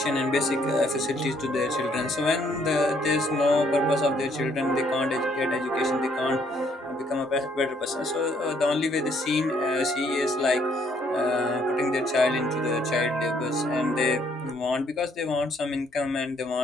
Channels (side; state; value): both; normal; correlation 0.67